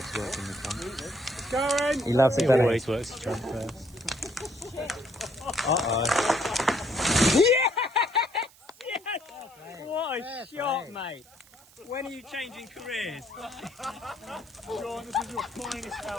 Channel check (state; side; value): noise; right; hiss, 25 dB below the sound